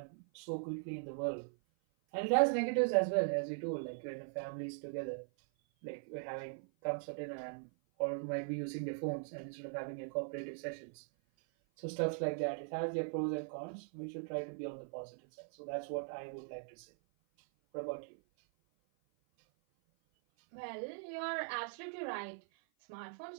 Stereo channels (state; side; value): silent; left; 51 dB below the other